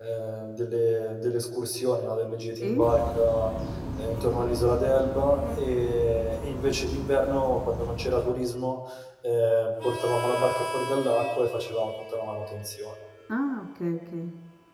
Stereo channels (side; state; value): both; identical; correlation 1.00